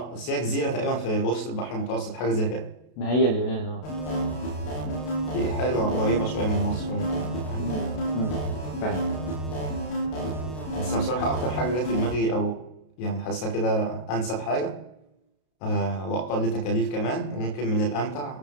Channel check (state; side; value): late; right; 32 ms